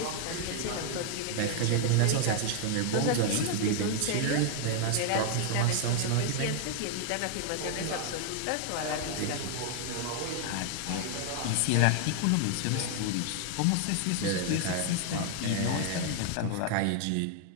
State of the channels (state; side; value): different; both; correlation 0.00